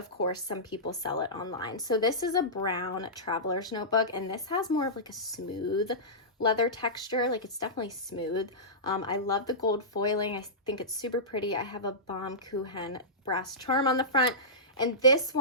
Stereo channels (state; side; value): normal; both; correlation -0.17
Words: course some people sell it online. So this is a brown traveler's notebook, and this has more of like a smooth leather texture. Like, it's definitely smooth. I love the gold foiling. I think it's super pretty. I have a Baumkuchen brass charm on the front, and this